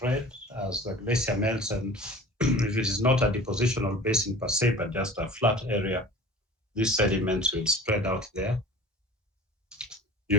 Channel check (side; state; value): both; normal; correlation 0.41